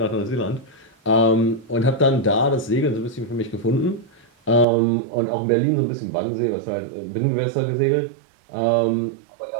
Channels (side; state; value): left; drops out; at 4.7 s